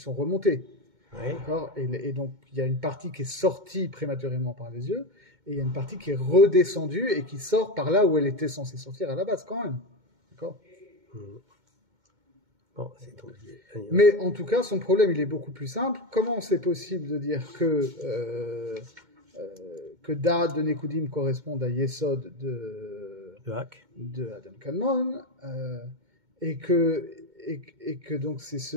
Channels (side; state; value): left; late; 2.2 ms